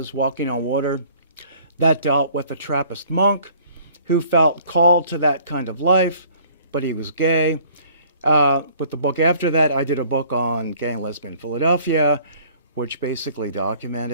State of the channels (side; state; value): both; inverted; correlation -0.55